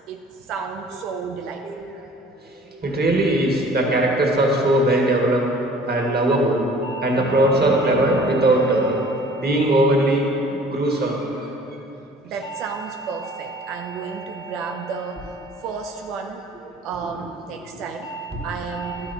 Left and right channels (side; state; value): both; normal; correlation 0.50